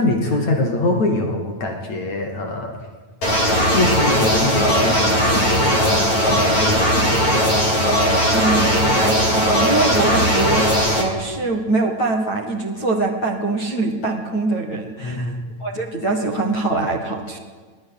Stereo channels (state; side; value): late; right; 9.0 ms